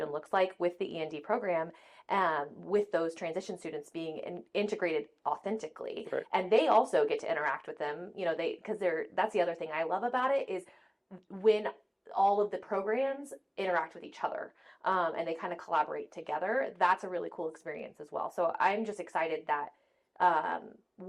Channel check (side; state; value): both; identical; correlation 1.00